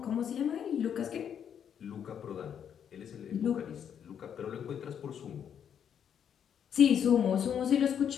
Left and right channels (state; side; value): quieter; right; 8.5 dB